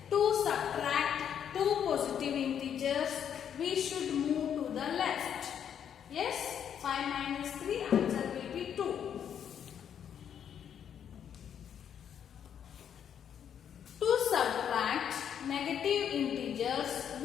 To subtract two positive integers, we should move to the left. Yes? 5 minus 3, answer will be 2. To subtract negative integers,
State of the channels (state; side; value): quieter; right; 8.7 dB